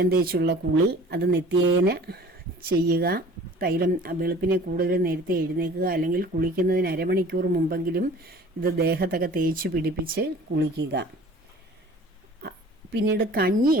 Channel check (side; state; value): both; normal; correlation 0.46